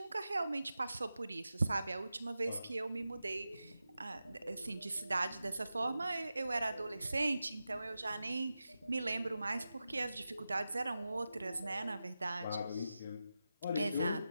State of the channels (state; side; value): inverted; both; correlation -0.92